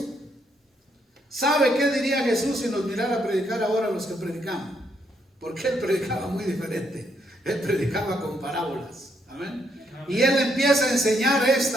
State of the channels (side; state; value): both; normal; correlation 0.74